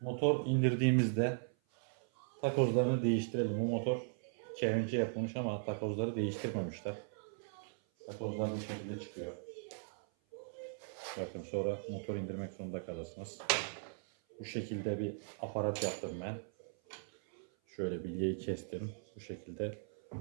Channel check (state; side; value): silent; left; 52 dB below the other